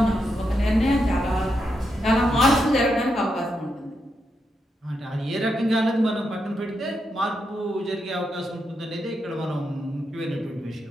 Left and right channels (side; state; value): both; normal; correlation 0.83